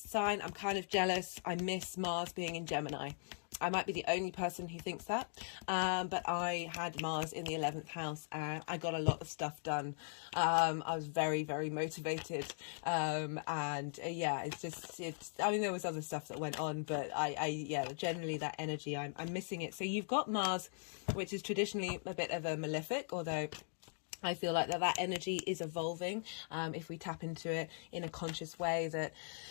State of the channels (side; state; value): right; silent; digital silence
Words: I'm kind of jealous. I miss Mars being in Gemini. I might be the only person who thinks that, but I had Mars in the 11th house, and I got a lot of stuff done. I was very, very motivated, yeah, I mean, there was other stuff that went on, but yeah, generally that energy, I'm missing it. So you've got Mars, which is traditionally a bit of a malefic, although I feel like that energy is evolving if we tap into it in a conscious way. That